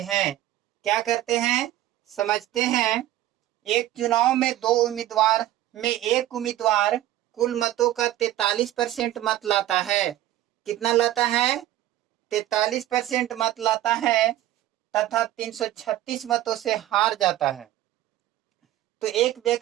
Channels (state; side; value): quieter; left; 13.8 dB